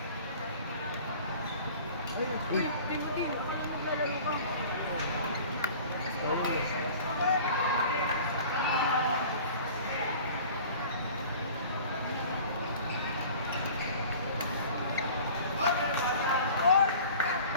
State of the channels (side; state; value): both; inverted; correlation -0.44